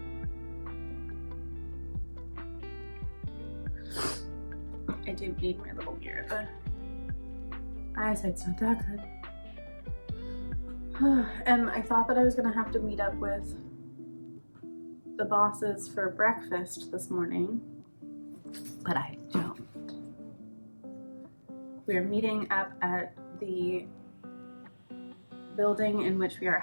I do need my little mirror. The eyesight's not that good. And I thought that I was gonna have to meet up with the bosses for breakfast this morning, but I don't. We're meeting up at the building in which we are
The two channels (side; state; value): both; inverted; correlation -1.00